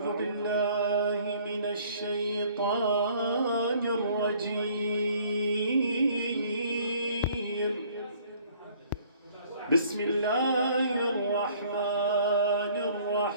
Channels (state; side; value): inverted; both; correlation -0.57